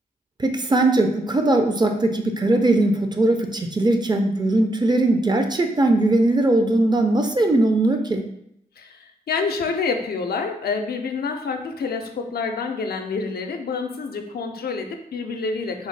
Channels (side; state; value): both; normal; correlation 0.74